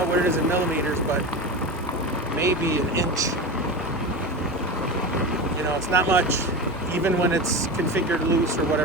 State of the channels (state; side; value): normal; both; correlation 0.25